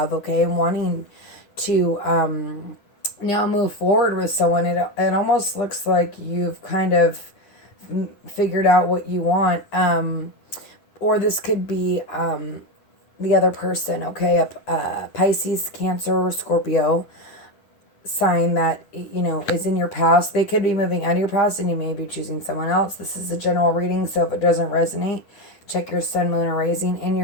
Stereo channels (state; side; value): late; right; 10 ms